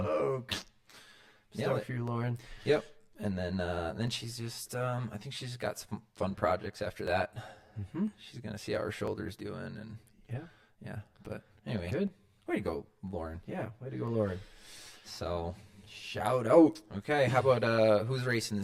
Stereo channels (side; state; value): both; identical; correlation 1.00